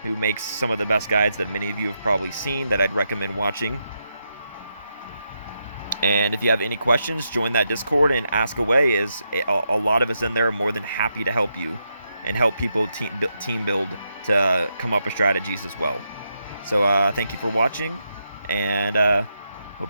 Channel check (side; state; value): both; inverted; correlation -0.83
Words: who makes some of the best guides that many of you have probably seen that I'd recommend watching. And if you have any questions, join that Discord and ask away, as a lot of us in there are more than happy to help you and help people team build to come up with strategies as well. So thank you for watching, and